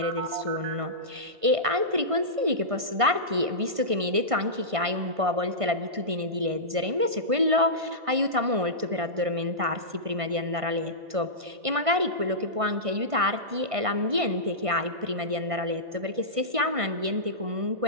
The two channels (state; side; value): late; left; 1.5 ms